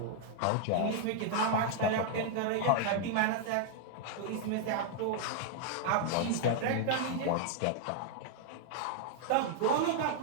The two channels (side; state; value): both; different; correlation 0.00